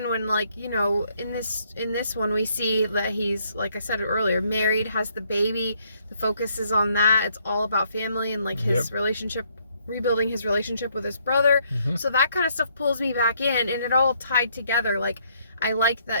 when like, you know, in this one we see that he's, like I said earlier, married, has the baby. The focus is on that. It's all about family and like his relationship, rebuilding his relationship with his brother. So that kind of stuff pulls me back in and it all tied together. Like I like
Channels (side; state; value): both; inverted; correlation -0.69